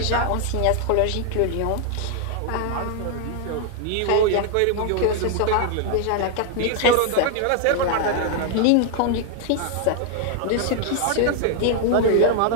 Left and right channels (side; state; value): both; different; correlation 0.00